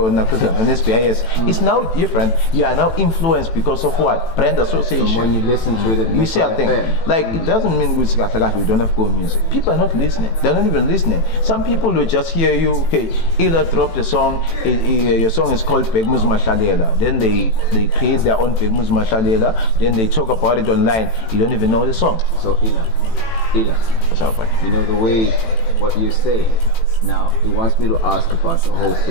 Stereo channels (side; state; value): right; late; 18 ms